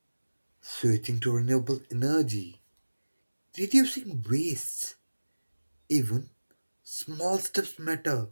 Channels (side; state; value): both; inverted; correlation -1.00